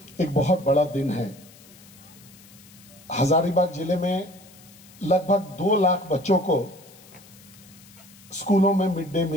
एक बहुत बड़ा दिन है। हजारीबाग जिले में लगभग 2 लाख बच्चों को स्कूलों में मिड डे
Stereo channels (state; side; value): noise; left; hiss, 23 dB below the sound